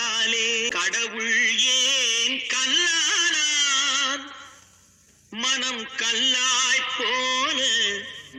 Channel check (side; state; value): both; identical; correlation 1.00